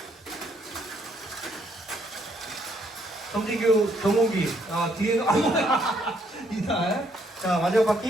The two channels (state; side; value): normal; both; correlation 0.70